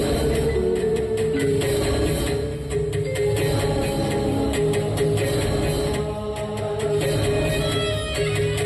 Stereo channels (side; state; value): both; identical; correlation 1.00